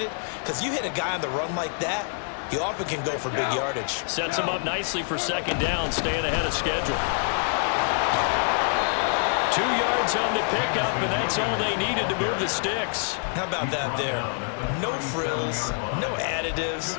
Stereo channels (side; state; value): right; silent; 61 dB below the other